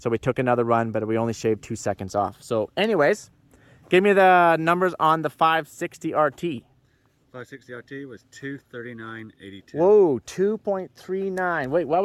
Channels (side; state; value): both; identical; correlation 1.00